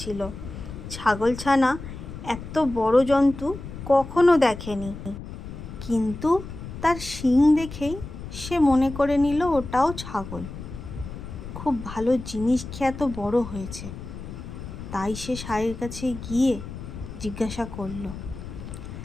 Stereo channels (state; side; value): noise; left; rumble, 11 dB below the sound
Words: ছাগলছানা এত বড় জন্তু কখনো দেখেনি, কিন্তু তার শিং দেখেই সে মনে করে নিল ওটাও ছাগল। খুব ভালো জিনিস খেয়ে এত বড় হয়েছে। তাই সে ষাঁড়ের কাছে গিয়ে জিজ্ঞাসা করলো,